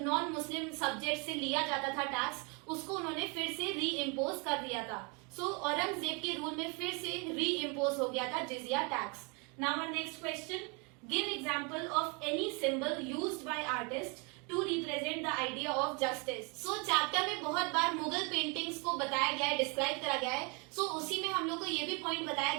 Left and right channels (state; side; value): quieter; left; 32.1 dB